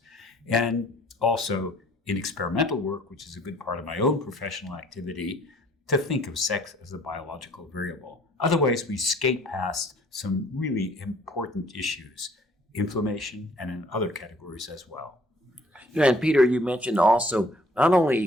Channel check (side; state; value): both; normal; correlation 0.57